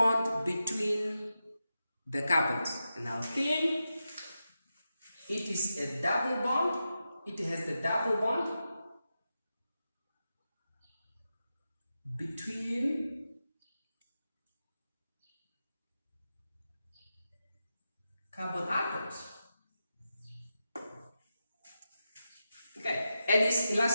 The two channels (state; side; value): inverted; both; correlation -0.89